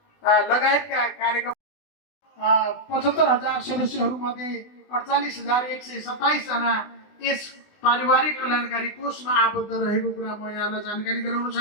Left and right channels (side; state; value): right; late; 20 ms